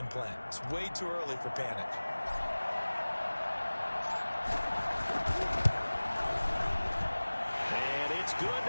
plan. It's way too early for panic. Good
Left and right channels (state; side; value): inverted; both; correlation -1.00